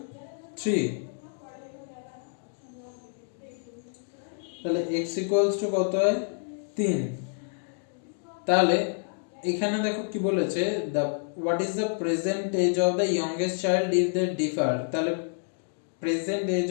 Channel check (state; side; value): silent; right; 59 dB below the other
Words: 3, তাহলে x equals to কত হয় 3। তাহলে এখানে দেখো কি বলেছে, the what is the present age of the youngest child if they differ, তাহলে present